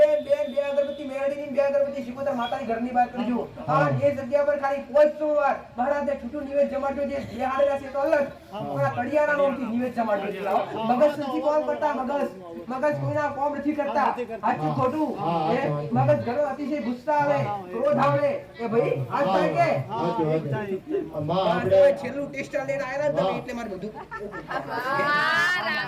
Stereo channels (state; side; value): identical; both; correlation 1.00